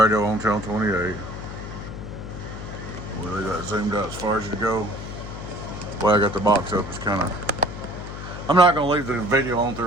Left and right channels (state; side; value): noise; left; hum, 9 dB below the sound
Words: on channel 28. Well, they got zoomed out as far as it go. The way I got the box up is kind of. I'm not gonna leave the video on